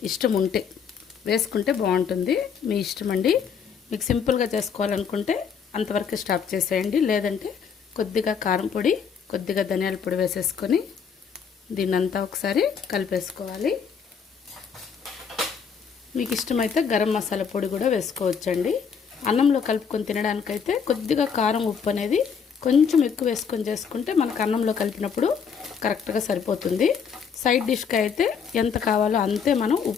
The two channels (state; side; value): quieter; right; 6.6 dB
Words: ఇష్టం ఉంటే వేసుకుంటే బాగుంటుంది. మీ ఇష్టం అండి. మీకు సింపుల్గా చేసుకోవాలనుకుంటే అంతవరకు స్టాప్ చేసేయండి. లేదంటే కొద్దిగా కారం పొడి, కొద్దిగా ధనియాల పొడి వేసేసుకొని దీన్నంతా ఒకసారి కలిపేసుకోవాలి. మీకు ఇష్టమైతే గరం మసాలా పొడి కూడా వేసుకోవచ్చండి. అన్నంలో కలుపుకొని తినడానికైతే కొద్దిగా కారం, ఉప్పు అనేది కొంచెం ఎక్కువ వేసుకొని చేసుకుంటే మనకు అన్నంలో కలిపినప్పుడు కరెక్ట్గా సరిపోతుంది. సైడ్ డిష్కి అయితే ఎంత కావాలో అంతే మనం